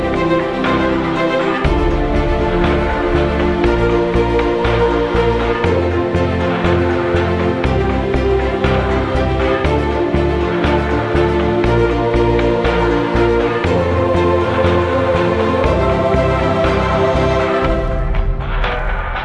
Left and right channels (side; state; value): both; identical; correlation 1.00